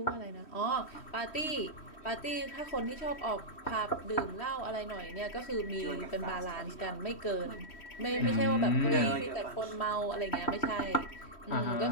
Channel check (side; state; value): right; late; 3.1 ms